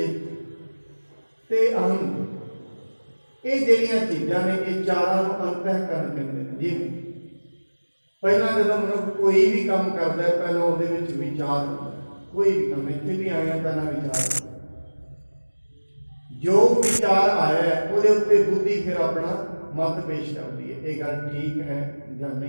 ਤੇ ਅਹੰ, ਇਹ ਜਿਹੜੀਆਂ ਚੀਜ਼ਾਂ ਨੇ, ਇਹ ਚਾਰਾਂ ਨੂੰ ਅੰਤਹਿਕਰਨ ਕਹਿੰਦੇ ਨੇ। ਜਿਵੇਂ ਪਹਿਲਾਂ ਜਦੋਂ ਮਨੁੱਖ ਕੋਈ ਵੀ ਕੰਮ ਕਰਦਾ ਹੈ, ਪਹਿਲਾਂ ਉਹਦੇ ਵਿੱਚ ਵਿਚਾਰ ਹੁੰਦਾ ਹੈ। ਕੋਈ ਵੀ ਕੰਮ, ਇੱਥੇ ਵੀ ਆਇਆ ਪਹਿਲਾਂ ਵਿਚਾਰ ਹੁੰਦਾ, ਜੋ ਵਿਚਾਰ ਆਇਆ ਹੈ ਉਹਦੇ ਉੱਤੇ ਬੁੱਧੀ ਫਿਰ ਆਪਣਾ ਮਤ ਪੇਸ਼ ਕਰਦੀ ਹੈ, ਇਹ ਗੱਲ ਠੀਕ ਹੈ ਜਾਂ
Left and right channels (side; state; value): both; inverted; correlation -1.00